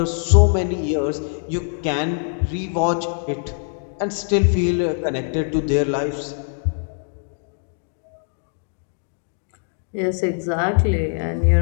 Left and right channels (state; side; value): silent; right; digital silence